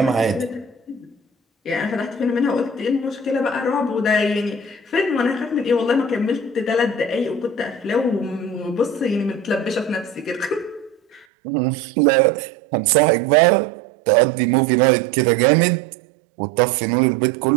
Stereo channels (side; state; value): left; drops out; at 11.2 s